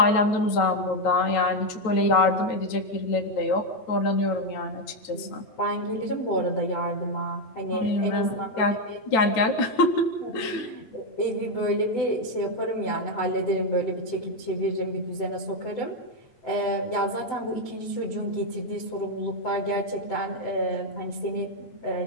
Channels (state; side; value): late; right; 9.1 ms